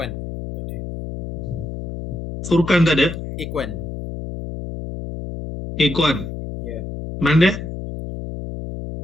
Furqan tak ada? Iqwan. Iqwan. Yeah. Mana dia?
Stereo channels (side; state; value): left; noise; hum, 8 dB below the sound